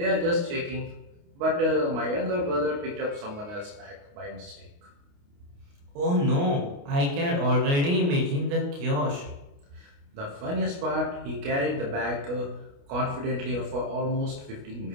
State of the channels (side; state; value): left; late; 29 ms